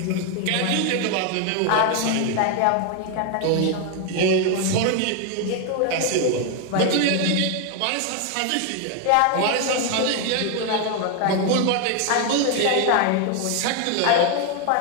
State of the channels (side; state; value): both; different; correlation 0.01